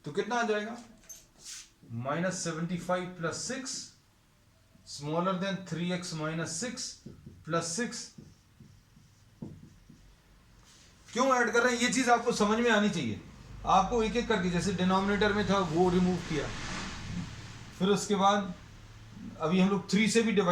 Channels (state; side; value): identical; both; correlation 1.00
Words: तो कितना आ जाएगा -75 plus 6 smaller then 3x minus 6 plus 6। क्यों ऐड कर रहे हैं, ये चीज आपको समझ में आनी चाहिए। आपको एक एक करके, जैसे डिनोमिनेटर में था वो रिमूव किया, फिर उसके बाद अभी हम लोग 3 से भी